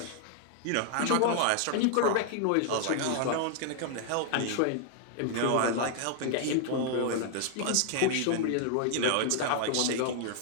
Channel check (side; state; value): both; different; correlation 0.00